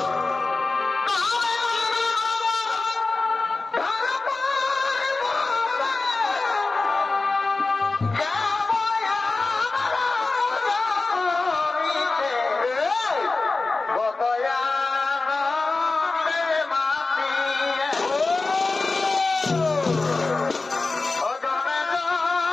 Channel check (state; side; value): quieter; right; 3.6 dB